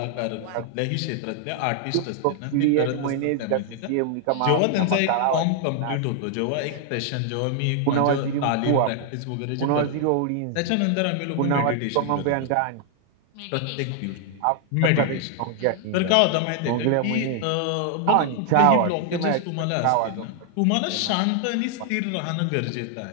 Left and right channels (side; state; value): both; different; correlation 0.00